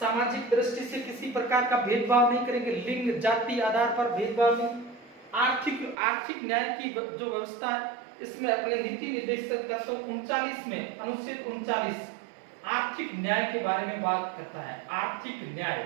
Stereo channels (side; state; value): left; drops out; at 6.0 s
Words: दृष्टि से किसी प्रकार का भेदभाव नहीं करेंगे, लिंग जाति आधार पर भेदभाव नहीं। आर्थिक न्याय की जो व्यवस्था है इसमें अपने नीति निर्देशक तत्व 39 में अनुच्छेद 39 आर्थिक न्याय के बारे में बात करता है। आर्थिक